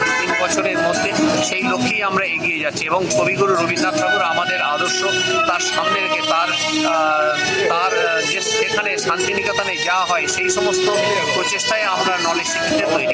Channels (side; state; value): both; identical; correlation 1.00